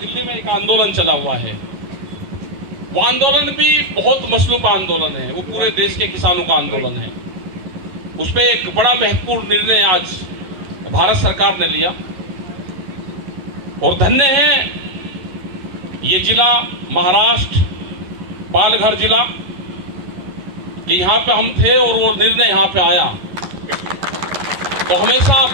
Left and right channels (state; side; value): late; left; 11 ms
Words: में एक आंदोलन चला हुआ है, वो आंदोलन भी बहुत मसलूब का आंदोलन है, वो पूरे देश के किसानों का आंदोलन है। उस पर एक बड़ा महत्वपूर्ण निर्णय आज भारत सरकार ने लिया और धन्य है ये जिला महाराष्ट्र पालघर जिला कि यहाँ पे हम थे और वो निर्णय यहाँ पे आया, तो हमेशा